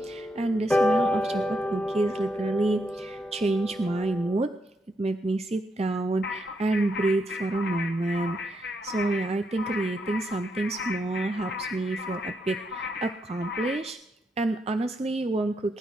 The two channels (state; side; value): normal; both; correlation 0.80